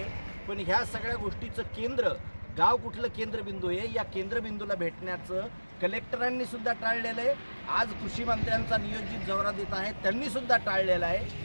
पण ह्या सगळ्या गोष्टीचं केंद्र गाव कुठलं केंद्रबिंदू आहे या केंद्रबिंदूला भेटण्याचं कलेक्टरांनी सुद्धा टाळलेलं आहे। आज कृषी मंत्र्यांचा नियोजित दौरा देत आहे त्यांनी सुद्धा टाळलेलं आहे।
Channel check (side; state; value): both; inverted; correlation -1.00